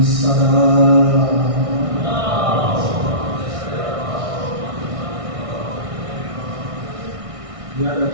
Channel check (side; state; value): left; late; 1.6 ms